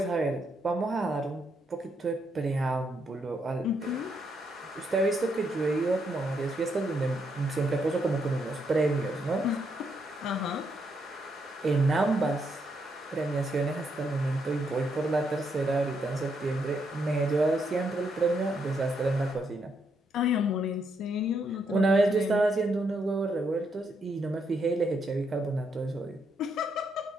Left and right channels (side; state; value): both; normal; correlation 0.77